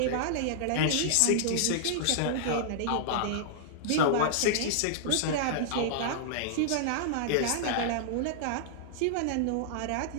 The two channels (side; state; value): both; different; correlation -0.01